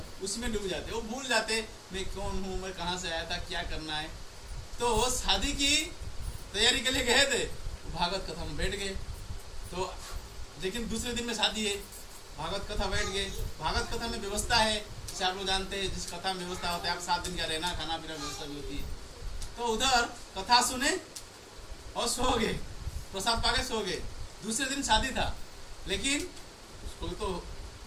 उसमें डूब जाते, वो भूल जाते मैं कौन हूँ, मैं कहाँ से आया था, क्या करना है। तो शादी की तैयारी के लिए गए थे, भागवत कथा में बैठ गए। तो लेकिन दूसरे दिन में शादी है, भागवत कथा बैठ गए। भागवत कथा में व्यवस्था है, जैसे आप लोग जानते हैं, जिस कथा में व्यवस्था होता है, आप 7 दिन का रहना खाना पीना व्यवस्था भी होती है। तो उधर कथा सुने और सो गए, प्रसाद पाके सो गए। दूसरे दिन शादी था, लेकिन उसको तो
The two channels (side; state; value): both; identical; correlation 1.00